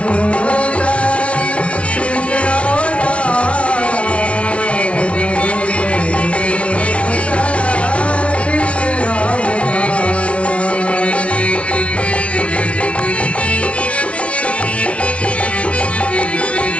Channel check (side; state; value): right; late; 0.062 ms